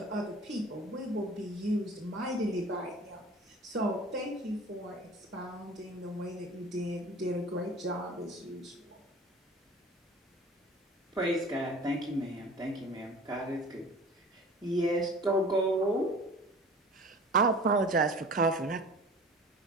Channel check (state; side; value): normal; both; correlation 0.43